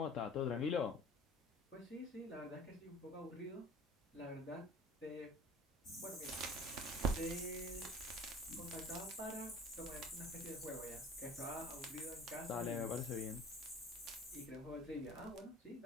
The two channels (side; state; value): both; normal; correlation 0.44